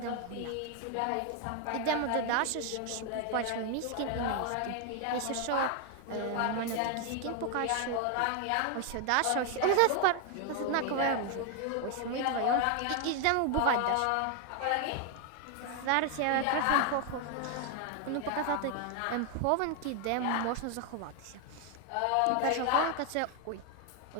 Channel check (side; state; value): both; different; correlation 0.01